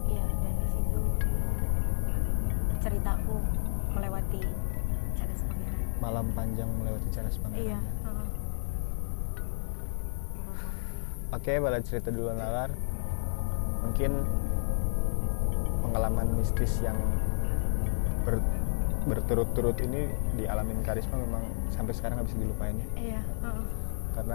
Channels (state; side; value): silent; right; 57 dB below the other